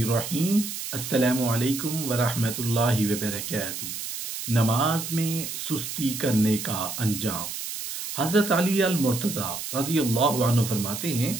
السلام علیکم ورحمۃ اللہ وبرکاتہ۔ نماز میں سستی کرنے کا انجام۔ حضرت علی المرتضیٰ رضی اللہ عنہ فرماتے ہیں،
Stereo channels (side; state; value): right; noise; hiss, 6 dB below the sound